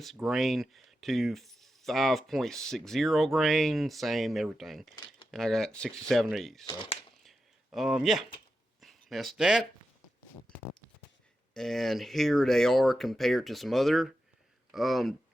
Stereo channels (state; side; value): normal; both; correlation 0.90